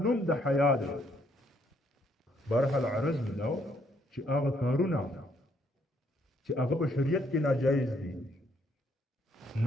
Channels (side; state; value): both; normal; correlation 0.70